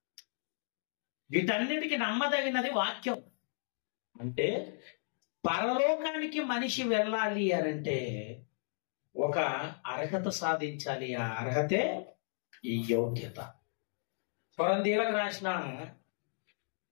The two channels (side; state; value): right; silent; digital silence